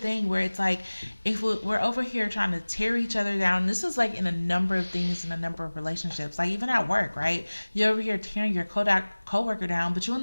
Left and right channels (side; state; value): both; inverted; correlation -1.00